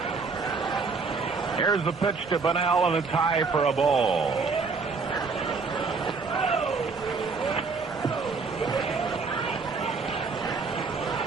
Here's the pitch to Bonnell, and a tie for a ball.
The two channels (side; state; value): left; quieter; 4.6 dB